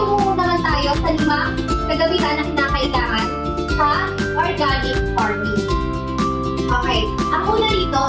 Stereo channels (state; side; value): identical; both; correlation 1.00